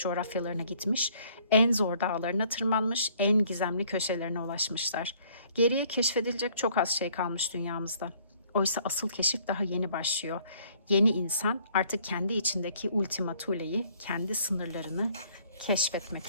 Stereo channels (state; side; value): inverted; both; correlation -0.60